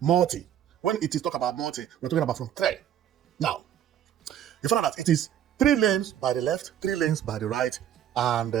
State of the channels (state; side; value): quieter; left; 10.3 dB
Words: When it is talk about multi, we're talking about from three. Now, you find out that it is 3 lanes by the left, 3 lanes by the right, and